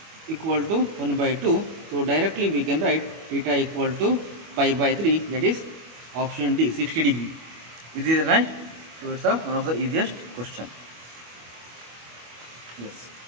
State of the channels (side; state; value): left; late; 25 ms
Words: equal to 1 by 2. So directly we can write theta equal to pi by 3, that is option D, 60 degree. Is it right? So it's one of the easiest question. Yes.